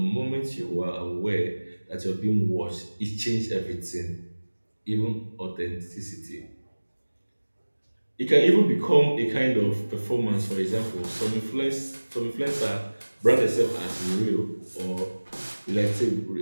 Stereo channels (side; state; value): both; inverted; correlation -1.00